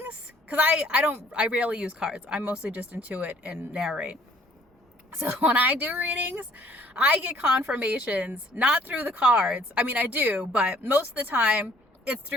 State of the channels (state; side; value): normal; both; correlation 0.59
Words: because I rarely use cards. I mostly just intuit and narrate. So when I do readings, I get confirmations, not through the cards. I mean, I do, but most of the time it's